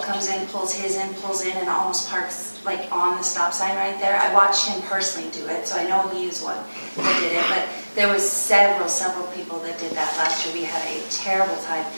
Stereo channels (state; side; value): inverted; both; correlation -1.00